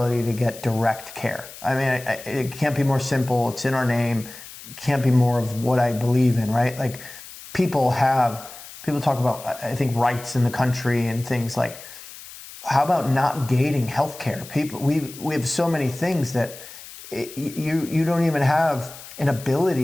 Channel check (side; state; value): left; noise; hiss, 16 dB below the sound